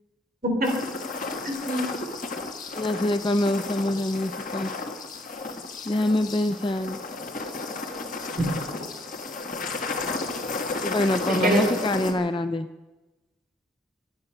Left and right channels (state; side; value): normal; both; correlation 0.65